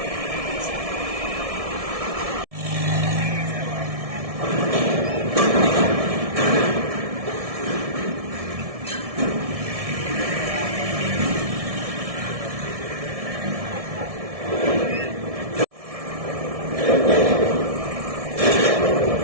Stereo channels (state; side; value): late; left; 1.7 ms